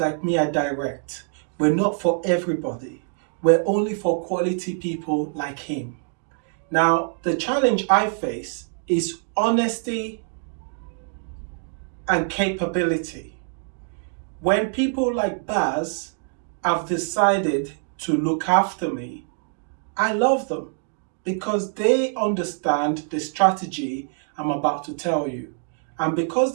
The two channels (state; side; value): silent; left; 60 dB below the other